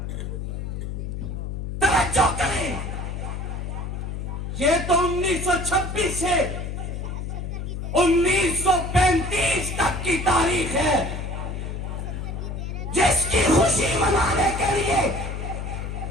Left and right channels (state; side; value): noise; left; hum, 5 dB below the sound